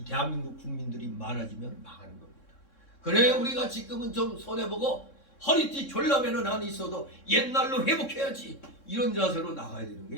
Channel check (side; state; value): right; late; 3.6 ms